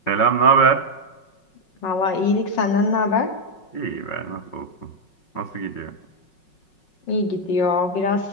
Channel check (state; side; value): late; right; 5.4 ms